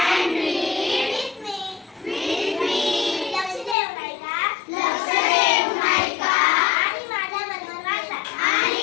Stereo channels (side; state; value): right; drops out; at 3.8 s